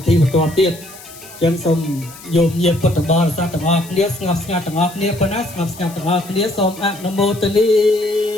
ធីបន្តទៀតចឹងសូមយោមញាតិពុទ្ធបរិស័ទទាំងអស់គ្នាស្ងប់ស្ងាត់ទាំងអស់គ្នាប៉ុណ្ណាស្ងប់ស្ងាត់ទាំងអស់គ្នាសូមអនុមោទនី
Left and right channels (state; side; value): noise; left; hiss, 18 dB below the sound